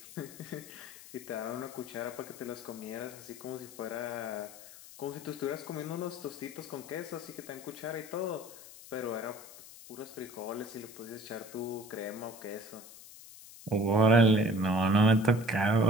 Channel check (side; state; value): left; noise; hiss, 17 dB below the sound